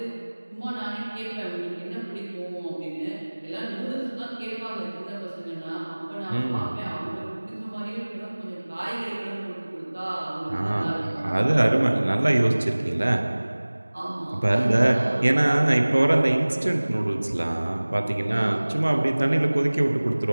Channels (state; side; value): inverted; both; correlation -1.00